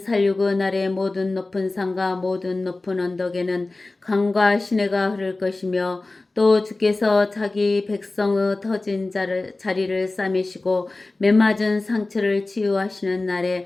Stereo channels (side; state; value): right; quieter; 3.1 dB